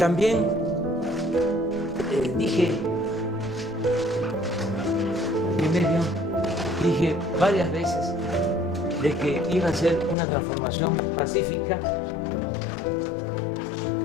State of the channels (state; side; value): drops out; right; at 10.2 s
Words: dije varias veces de que iba a ser una transformación pacífica,